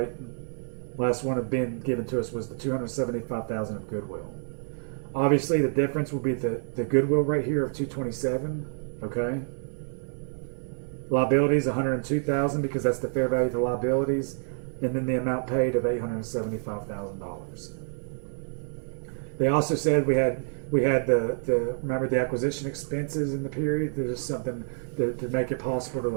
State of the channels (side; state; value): left; silent; digital silence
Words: Last one of being given to us was the $275,000 of goodwill. Obviously, the difference will be the goodwill right here of $227,000. Okay. Liabilities $102,000 because that's the fair value of the liabilities, and then the amount paid of $875,000. They also said we had the remember the acquisition expenses in the period. There's something to make it possible to